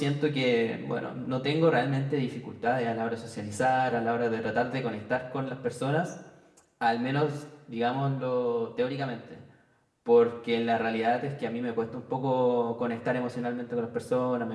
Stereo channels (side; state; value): both; identical; correlation 1.00